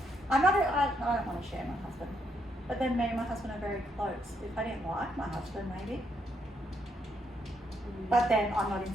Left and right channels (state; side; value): normal; both; correlation 0.76